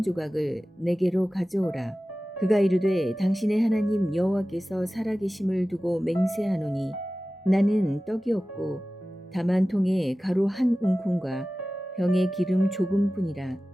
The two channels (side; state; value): both; normal; correlation 0.96